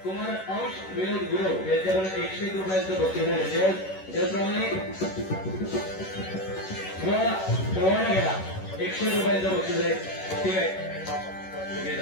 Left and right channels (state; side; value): late; right; 11 ms